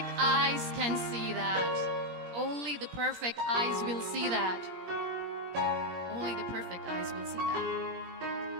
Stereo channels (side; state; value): left; late; 17 ms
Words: eyes can see that. Only the perfect eyes will see that. Only the perfect eyes will see